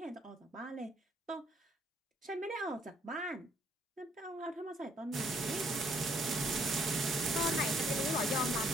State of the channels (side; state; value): both; normal; correlation 0.66